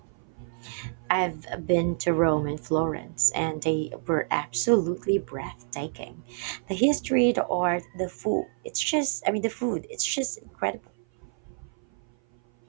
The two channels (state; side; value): silent; left; 56 dB below the other